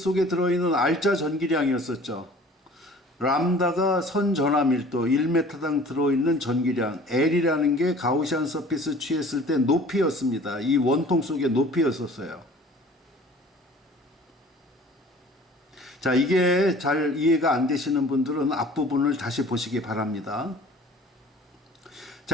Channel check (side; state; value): both; normal; correlation 0.48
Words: 들어있는 R자 전기량이었었죠. 람다가 선전하 밀도 1m당 들어있는 전기량, L이라는 게 가우시안 서피스 취했을 때 높이였습니다. 이 원통 속의 높이였었어요. 자, 이게 잘 이해가 안 되시는 분들은 앞부분을 다시 보시기 바랍니다.